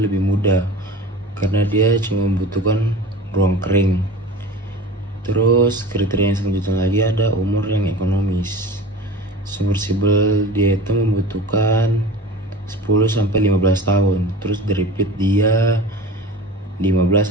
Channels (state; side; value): normal; both; correlation 0.36